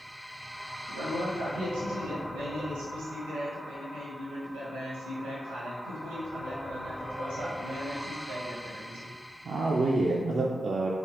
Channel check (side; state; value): both; normal; correlation 0.88